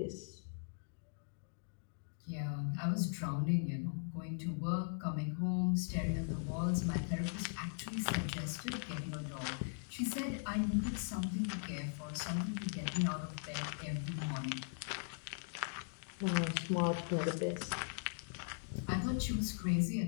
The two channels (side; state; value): right; silent; digital silence